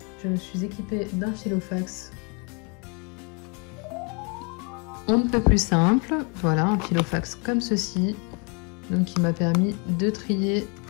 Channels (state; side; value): quieter; right; 34.0 dB